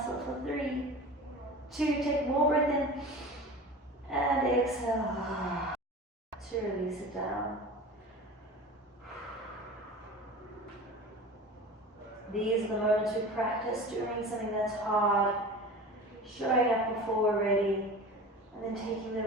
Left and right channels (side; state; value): both; normal; correlation 0.35